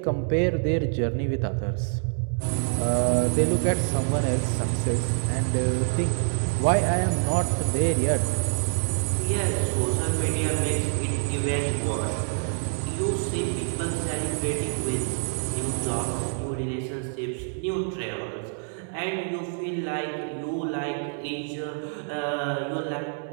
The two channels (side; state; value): left; silent; 61 dB below the other